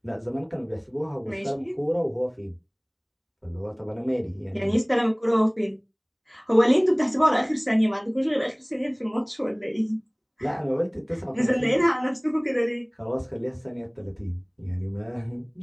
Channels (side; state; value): both; identical; correlation 1.00